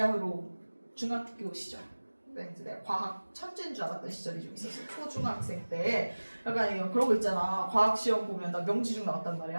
중학교 시절, 이제 내가 과학 천재인 줄 알았던 시절이 좀 있었어. 초중학생 때 약간 그런 거 있잖아. 과학 시험 보면 나 명지중 나왔단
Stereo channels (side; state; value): both; inverted; correlation -1.00